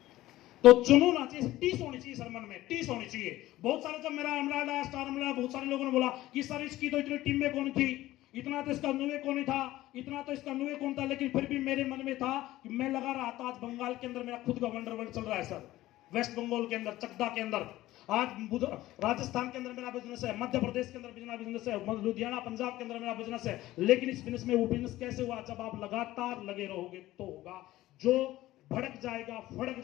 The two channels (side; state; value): right; quieter; 16.0 dB